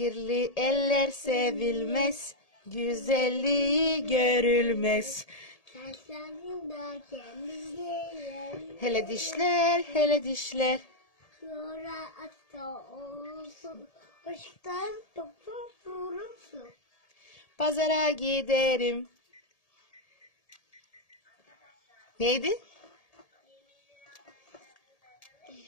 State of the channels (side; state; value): right; late; 1.8 ms